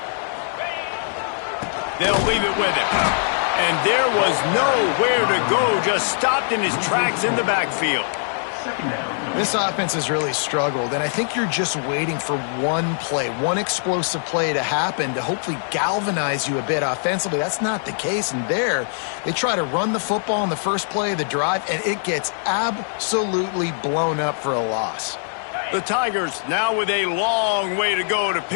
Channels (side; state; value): right; silent; digital silence